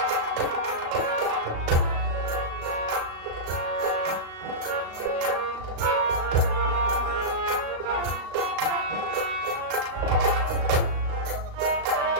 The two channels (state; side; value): late; left; 37 ms